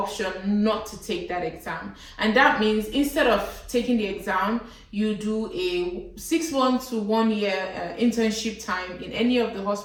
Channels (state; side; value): identical; both; correlation 1.00